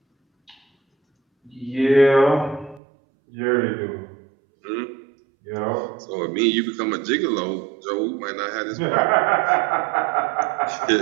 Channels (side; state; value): left; drops out; at 2.8 s